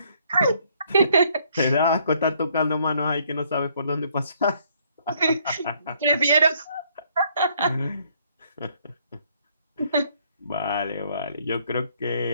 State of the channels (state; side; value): inverted; both; correlation -0.66